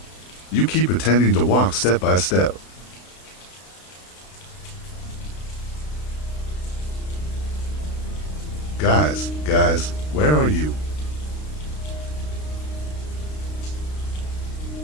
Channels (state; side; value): late; right; 32 ms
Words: You keep pretending to walk step by step. Guys, where are you?